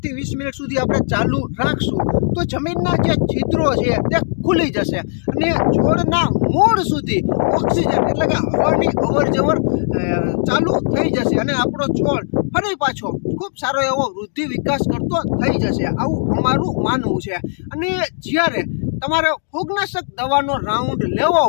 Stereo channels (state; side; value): silent; right; digital silence